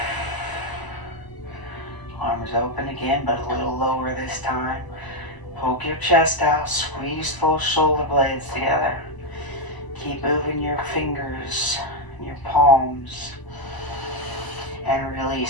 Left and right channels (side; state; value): right; late; 1.0 ms